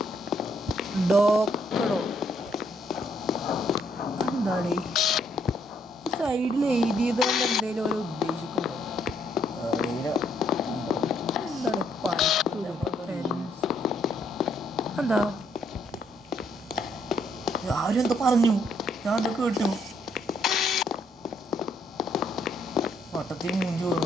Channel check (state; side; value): normal; both; correlation 0.71